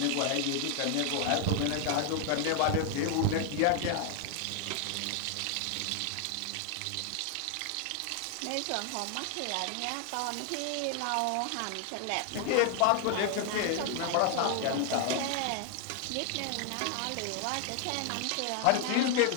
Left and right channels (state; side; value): different; both; correlation 0.00